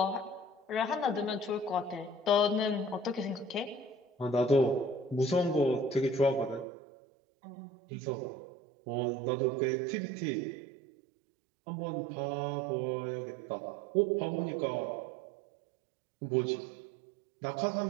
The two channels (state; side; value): drops out; left; at 6.7 s